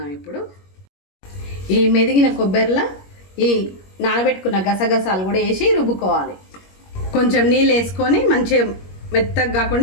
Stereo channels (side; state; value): right; late; 21 ms